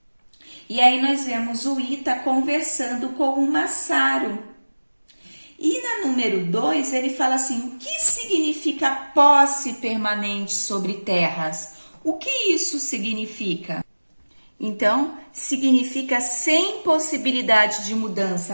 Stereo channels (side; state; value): both; inverted; correlation -1.00